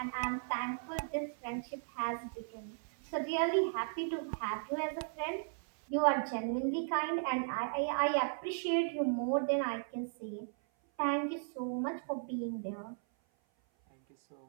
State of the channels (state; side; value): silent; left; 54 dB below the other